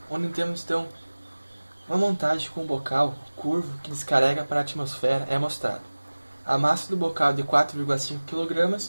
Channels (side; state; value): both; inverted; correlation -1.00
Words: onde temos então uma montagem com um bocal curvo que descarrega para a atmosfera é mostrado. A massa do bocal é de 4,5